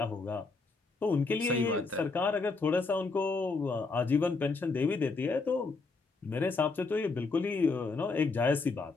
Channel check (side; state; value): right; quieter; 4.0 dB